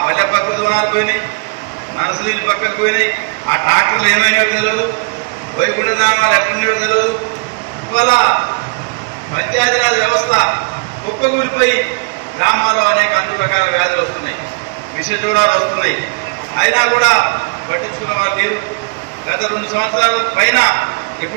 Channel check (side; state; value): left; quieter; 32.2 dB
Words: పల్లె ప్రకృతి వనాలు పోయినాయి, నర్సరీలు పక్కకు పోయినాయి, ఆ ట్రాక్టర్లు ఏమైనాయో తెలియదు, వైకుంఠధామాలు ఎట్లున్నాయో తెలియదు. ఇవాళ పంచాయతీరాజ్ వ్యవస్థ కుప్పగూలిపోయి గ్రామాల్లో అనేక అన్ని రకాల వ్యాధులు వస్తున్నాయి, విషజ్వరాలు వస్తున్నాయి. అయినా కూడా పట్టించుకున్న వాళ్ళు లేరు. గత 2 సంవత్సరాల పైన